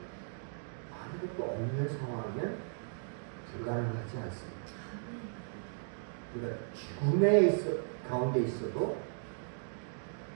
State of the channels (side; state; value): left; silent; digital silence